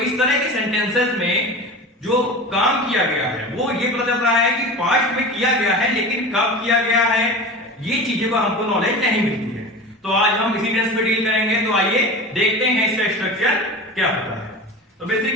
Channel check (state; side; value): normal; both; correlation 0.32